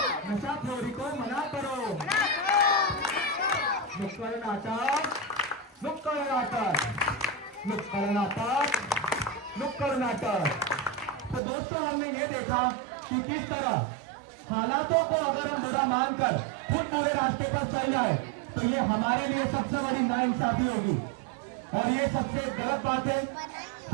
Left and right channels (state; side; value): drops out; left; at 11.4 s